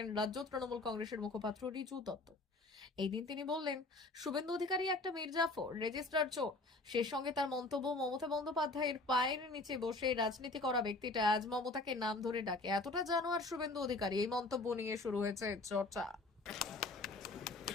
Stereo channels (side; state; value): right; quieter; 3.1 dB